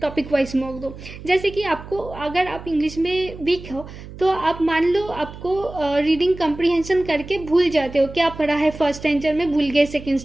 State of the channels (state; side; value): noise; right; hum, 14 dB below the sound